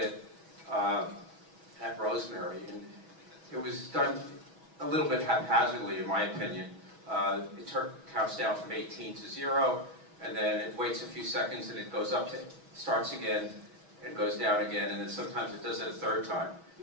at Rosemary, and it was done a little bit haphazardly, in my opinion. It counts down from 18 to 0, and then it waits a few seconds, and it goes up to, starts again, and goes down again, and then sometimes it does it a third time,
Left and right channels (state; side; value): late; left; 6.2 ms